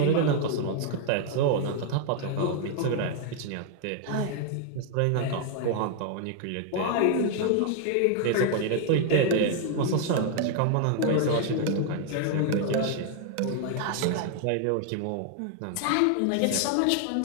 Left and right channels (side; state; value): both; different; correlation 0.00